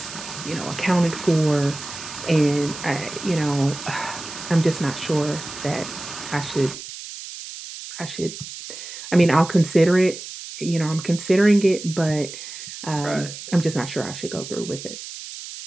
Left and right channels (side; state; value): right; noise; hiss, 11 dB below the sound